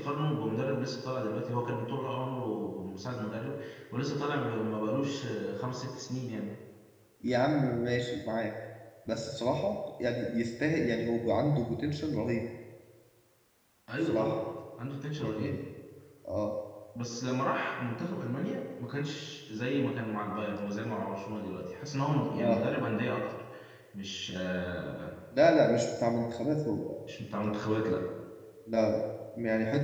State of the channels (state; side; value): identical; both; correlation 1.00